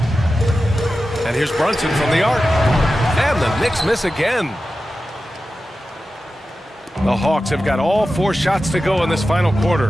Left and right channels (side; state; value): both; normal; correlation 0.93